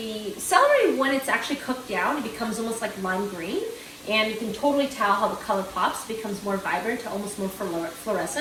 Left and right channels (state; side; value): identical; both; correlation 1.00